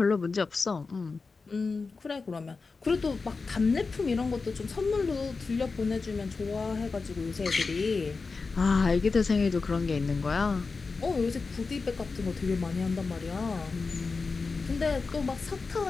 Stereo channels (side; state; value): right; quieter; 4.3 dB